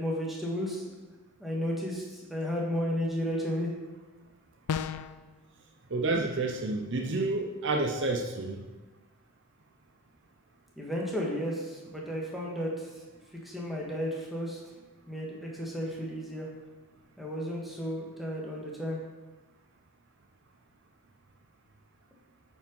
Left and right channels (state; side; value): normal; both; correlation 0.43